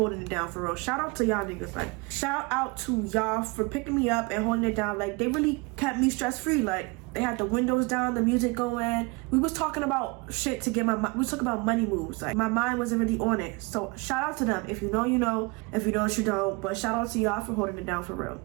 it down for real. Shout out to y'all niggas. Like, shout out to y'all for picking me up and holding it down. Like, they really kept me stress-free. Like, They had the windows down, the music going. We was talking about shit to get we was talking about money moves. Like, my mind wasn't really on it. So shout out to them. If you know, you know. If you don't, you don't. But shout out to y'all for holding it down for real.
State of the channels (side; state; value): left; quieter; 27.6 dB